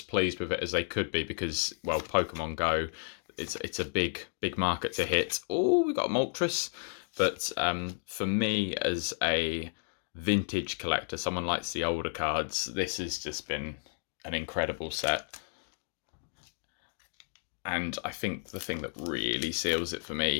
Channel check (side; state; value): right; silent; digital silence